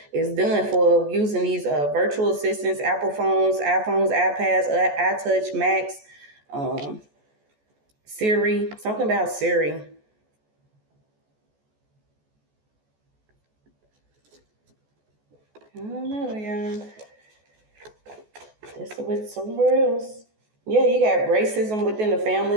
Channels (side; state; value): left; late; 14 ms